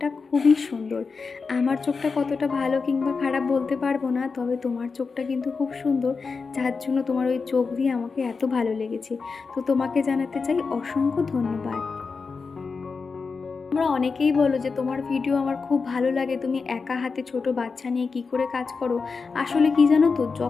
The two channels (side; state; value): right; quieter; 4.8 dB